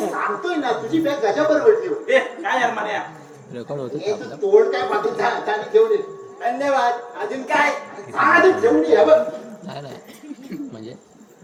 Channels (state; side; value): identical; both; correlation 1.00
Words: ना तुझी बॅग गजा बरोबर ठेव ए काय यार मान्या रेकॉर्ड होत हे तू तोड काय पाठवून त्याने ठेवून ये. धन्यवाद अजून काय आधी ठेवून ये बघ नाही नाही म्हणजे